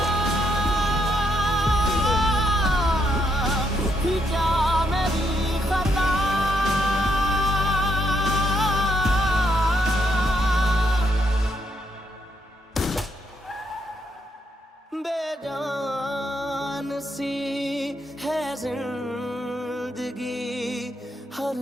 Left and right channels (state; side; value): normal; both; correlation 0.76